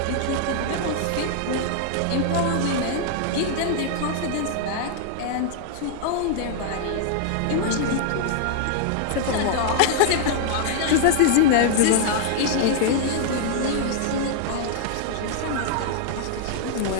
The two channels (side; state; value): both; different; correlation -0.01